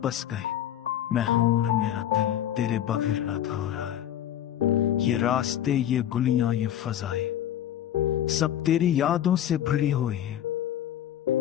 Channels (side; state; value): right; quieter; 11.1 dB